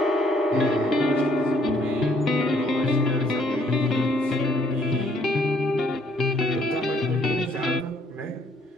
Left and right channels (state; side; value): normal; both; correlation 0.66